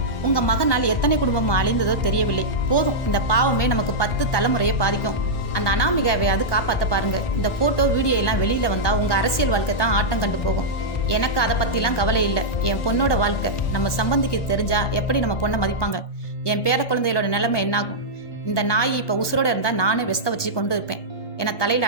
உங்க மகனால் எத்தனை குடும்பம் அழிந்ததோ தெரியவில்லை. போதும், இந்த பாவமே நமக்கு 10 தலைமுறையை பாதிக்கும். அந்த அனாமிகாவையாவது காப்பாற்ற பாருங்க. இந்த போட்டோ வீடியோ எல்லாம் வெளியில வந்தா உங்க அரசியல் வாழ்க்கை தான் ஆட்டம் கண்டு போகும். எனக்கு அதை பத்திலாம் கவலை இல்லை. என் பொண்ணோட வாழ்க்கை நம்ம சம்பந்திக்கு தெரிஞ்சா எப்படி நம்ம பொண்ணை மதிப்பாங்க? என் பேர குழந்தைகளோட நிலைமை என்னாகும்? இந்த நாய் இப்ப உசுரோட இருந்தா நானே வெஸ்த வச்சு கொண்டு இருப்பேன் என தலையில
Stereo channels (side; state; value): right; late; 1.2 ms